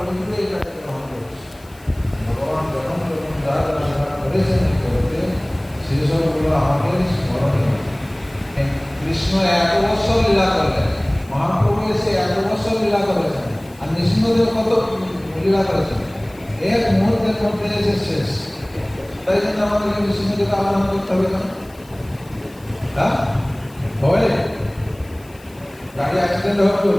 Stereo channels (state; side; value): noise; left; hiss, 27 dB below the sound